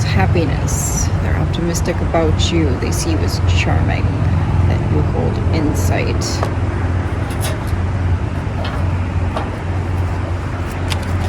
happiness. They're optimistic about you. They see you as charming, that you hold insight.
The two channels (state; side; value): identical; both; correlation 1.00